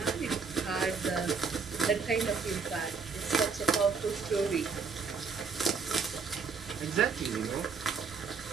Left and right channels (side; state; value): left; quieter; 5.3 dB